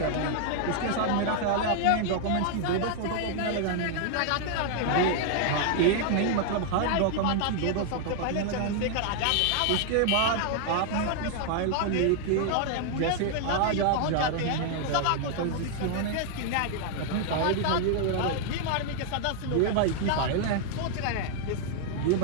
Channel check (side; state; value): both; different; correlation 0.00